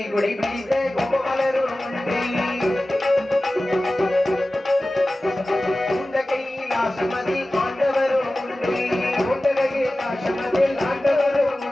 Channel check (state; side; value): normal; both; correlation 0.96